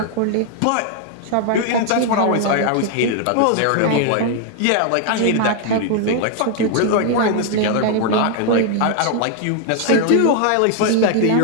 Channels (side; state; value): both; different; correlation 0.00